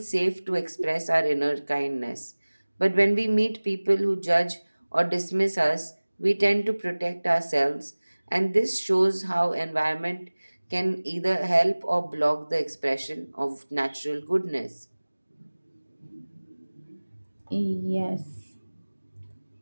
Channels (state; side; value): inverted; both; correlation -1.00